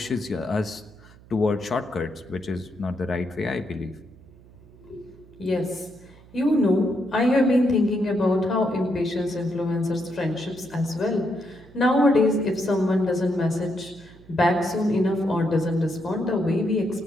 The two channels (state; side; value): noise; right; hum, 23 dB below the sound